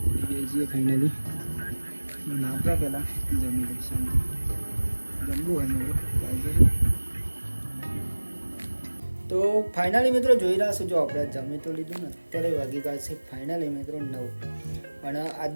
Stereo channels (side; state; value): both; inverted; correlation -1.00